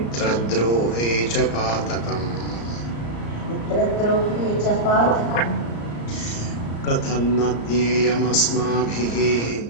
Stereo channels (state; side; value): late; right; 34 ms